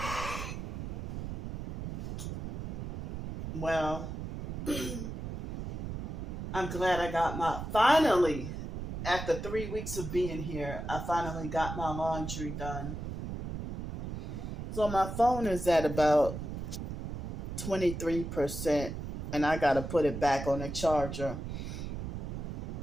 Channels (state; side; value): noise; right; rumble, 6 dB below the sound